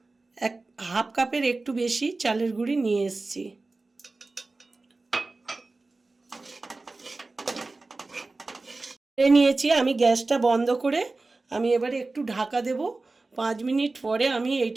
হাফ কাপের একটু বেশি চালের গুঁড়ি নিয়ে এসেছি। নিয়েছি আমি। গ্যাসটা বন্ধ করে আমি এবারে একটু ঢাকা দেব। 5 মিনিট পরে আমি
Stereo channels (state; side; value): quieter; left; 3.4 dB